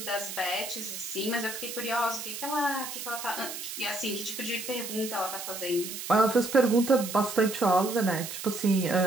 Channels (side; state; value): right; noise; hiss, 8 dB below the sound